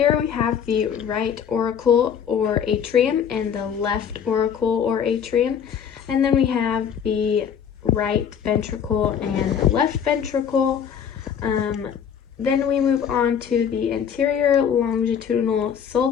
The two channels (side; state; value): right; quieter; 7.9 dB